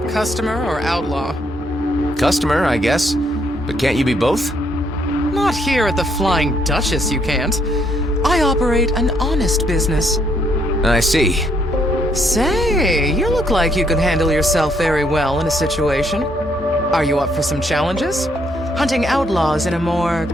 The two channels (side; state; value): both; normal; correlation 0.71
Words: Customer or outlaw? Customer, I guess. But can't you be both? Not here at the Flying Duchess, you can't. I operate an honest business. I see. Say, you look like you could handle yourself very well in a situation. Are you up for some challenges? Hunting outlaws in a more